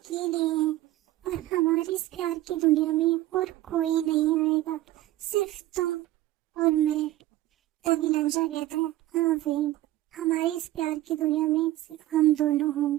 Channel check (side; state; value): left; quieter; 15.7 dB